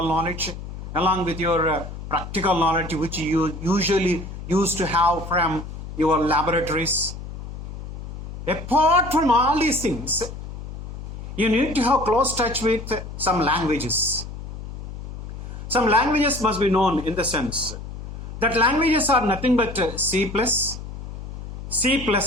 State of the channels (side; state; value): left; noise; hum, 10 dB below the sound